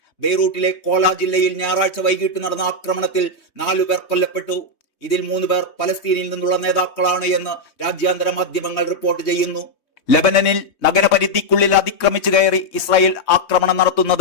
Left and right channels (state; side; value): late; right; 3.2 ms